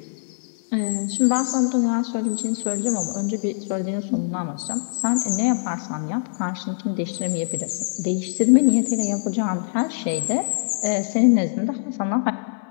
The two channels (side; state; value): right; silent; digital silence